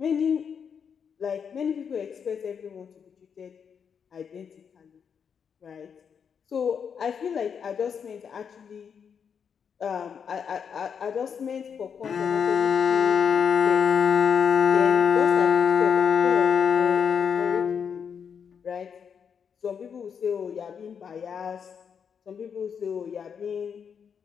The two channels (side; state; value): right; quieter; 7.0 dB